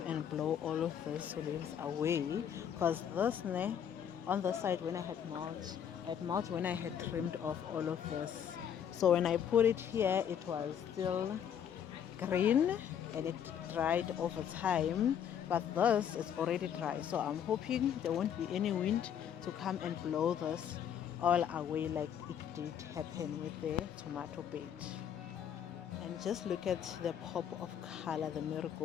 and blow all of these leaves away, because this on the side when I had mulch when I had trimmed off all of this. So when I put it here, it was still green and it dried over time, but this is already dry. So I'm hoping there won't be any wind to come and blow this all away like it did happen with the tomato bed. And just look at the pop of color the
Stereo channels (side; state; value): right; quieter; 8.8 dB